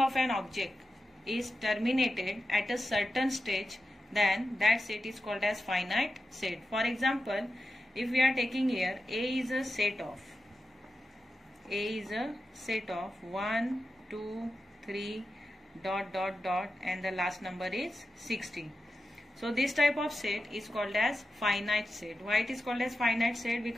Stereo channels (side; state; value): both; normal; correlation 0.91